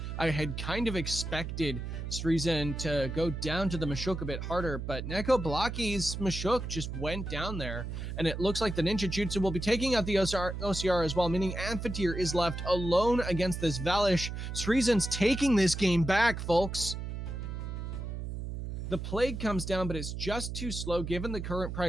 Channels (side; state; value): right; noise; hum, 6 dB below the sound